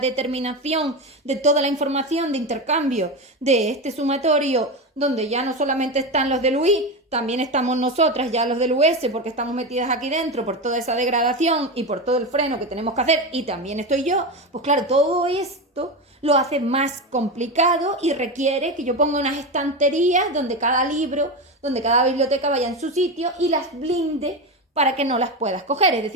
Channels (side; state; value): both; normal; correlation 0.18